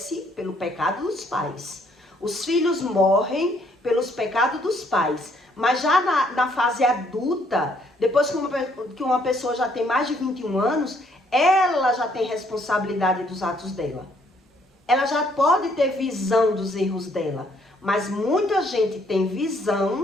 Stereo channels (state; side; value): normal; both; correlation 0.67